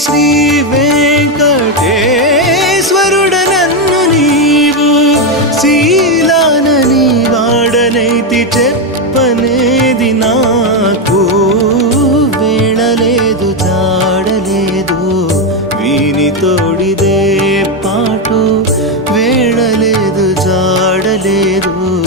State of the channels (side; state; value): both; normal; correlation 0.07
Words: శ్రీ వెంకటేశ్వరుడ నన్ను నీవు శీలానని వాడనైతి చెప్పనేది నాకు వేళలేదు జాడలేదు వీని తోడిదే పాటు వేళలేదు జాడలేదు